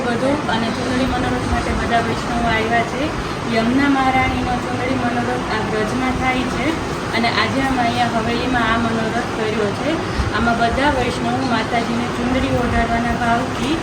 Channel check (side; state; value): both; identical; correlation 1.00